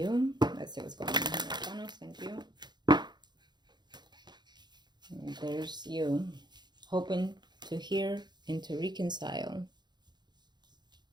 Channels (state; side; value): late; left; 0.21 ms